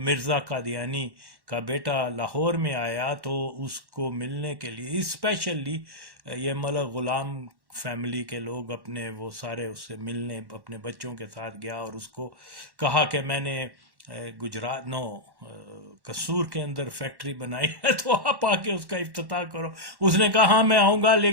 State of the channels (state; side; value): late; left; 1.1 ms